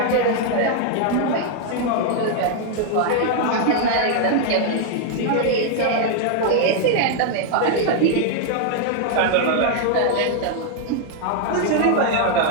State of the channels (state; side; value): different; both; correlation 0.00